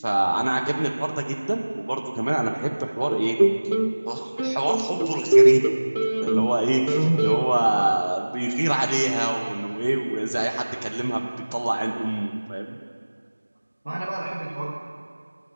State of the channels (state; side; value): inverted; both; correlation -1.00